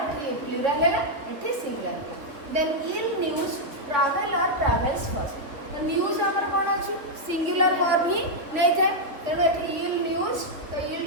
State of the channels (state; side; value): late; left; 3.5 ms